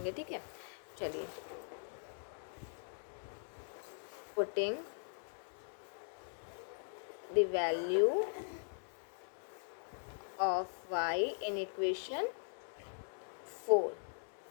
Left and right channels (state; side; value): silent; right; digital silence